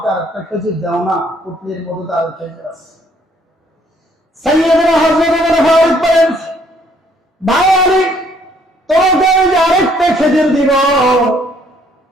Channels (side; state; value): both; normal; correlation 0.64